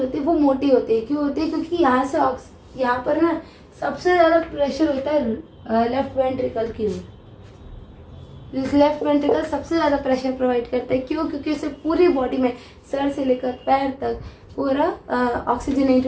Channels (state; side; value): identical; both; correlation 1.00